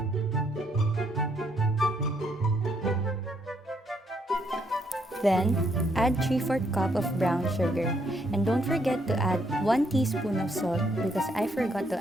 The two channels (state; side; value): normal; both; correlation 0.73